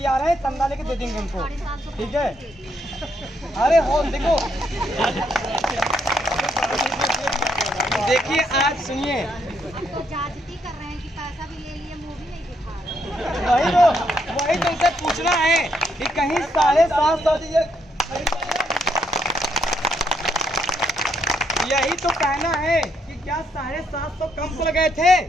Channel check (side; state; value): both; normal; correlation 0.75